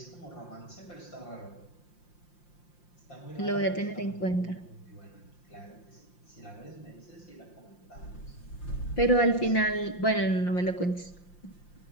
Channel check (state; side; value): late; right; 5.7 ms